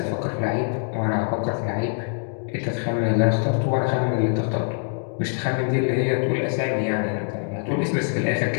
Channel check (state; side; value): silent; right; 57 dB below the other